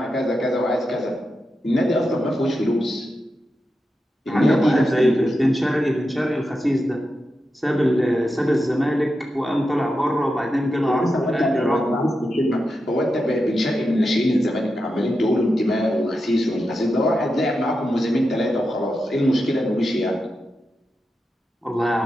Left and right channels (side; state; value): both; normal; correlation 0.89